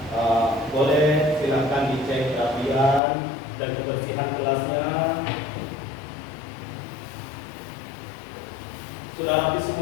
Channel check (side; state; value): right; drops out; at 3.0 s